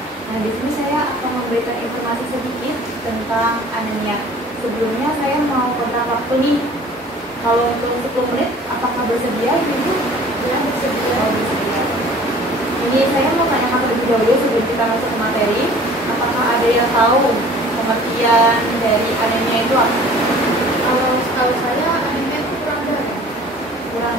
Nah, di sini saya akan memberikan informasi sedikit tentang anemia. Sebelumnya saya mau kontak waktu nih. Kalau untuk 10 menit, apakah bersedia, Ibu? Ya, bersedia. Oh, bersedia. Ini saya mau tanyakan terlebih dahulu sebelum kita masuk ke materi. Apakah ada yang tahu pengertian dari anemia itu apa? Kalau saya anemia itu kurang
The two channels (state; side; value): normal; both; correlation 0.48